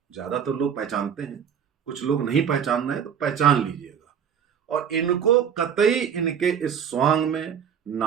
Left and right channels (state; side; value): quieter; left; 8.0 dB